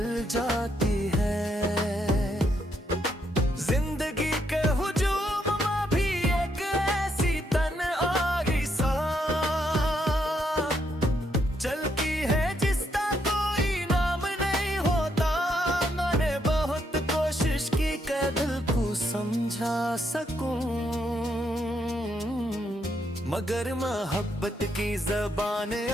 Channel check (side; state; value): both; normal; correlation 0.76